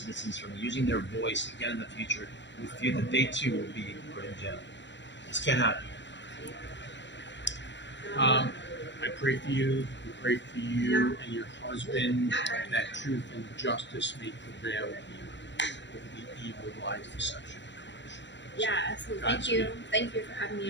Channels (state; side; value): late; right; 0.52 ms